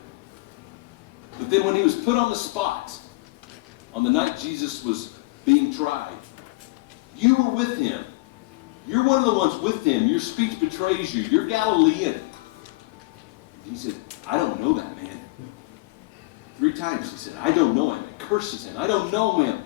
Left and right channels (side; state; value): right; quieter; 23.4 dB